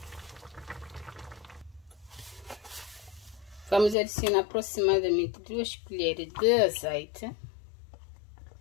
Vamos adicionar aproximadamente 2 colheres de azeite.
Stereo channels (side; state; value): right; drops out; at 4.0 s